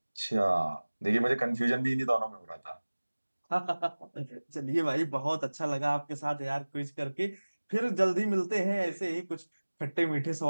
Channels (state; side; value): inverted; both; correlation -1.00